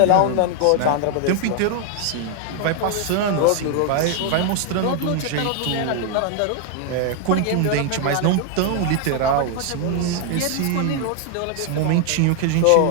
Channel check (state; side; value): different; both; correlation 0.00